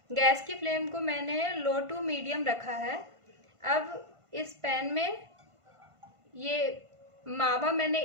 गैस की फ्लेम को मैंने लो टू मीडियम रखा है। अब इस पैन में ये मावा मैंने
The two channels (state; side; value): late; left; 1.5 ms